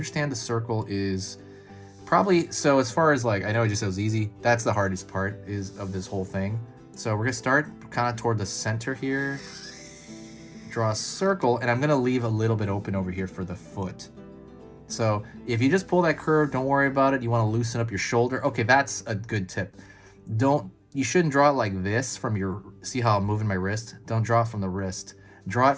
the circle is probably, so as far as like, I know I just said it was easy. That's the hardest part of this whole thing. So we're gonna start kind of toward the center here, draw a circle, and I'm gonna leave a little bit open over here for the foot. So if you just pull that curve, don't worry about it. You wanna loosen up your shoulder. Okay, that's a good tip. You shouldn't draw it like this from your, see how I'm moving my wrist? Don't draw it from the wrist. Draw it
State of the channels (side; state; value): both; identical; correlation 1.00